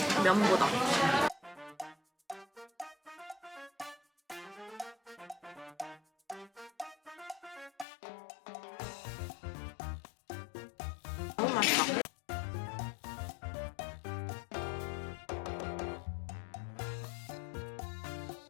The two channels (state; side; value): drops out; right; at 7.9 s